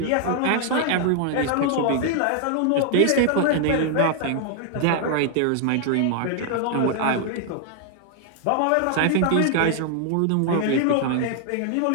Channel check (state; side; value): different; both; correlation 0.00